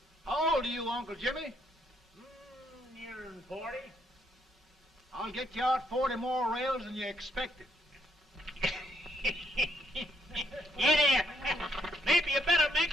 How old are you, Uncle Jimmy? Nearing 40. I'll get you out 40 more rails than you expected. Yeah, there. Maybe you better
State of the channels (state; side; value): normal; both; correlation 0.73